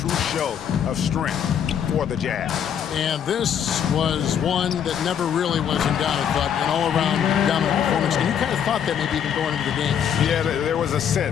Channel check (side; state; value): right; quieter; 8.6 dB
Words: show of strength for the Jazz. And this was one that never really was in doubt, but an all-around dominant performance. And you kind of thought that maybe even going into the game. Yeah, there was a